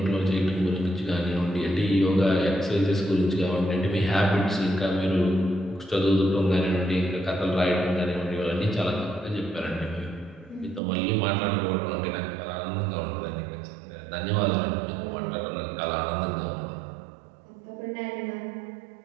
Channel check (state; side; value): drops out; left; at 10.8 s